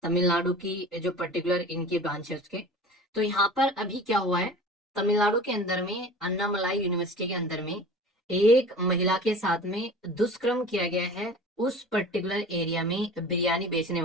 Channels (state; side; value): normal; both; correlation 0.40